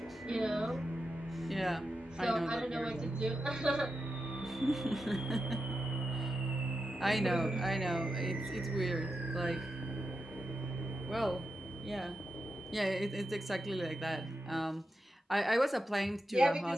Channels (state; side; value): normal; both; correlation 0.89